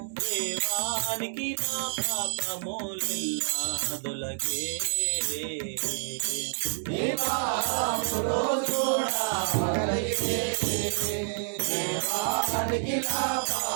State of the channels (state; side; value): silent; left; digital silence